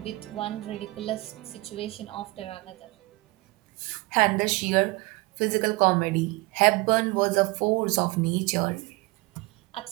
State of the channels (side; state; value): left; quieter; 23.1 dB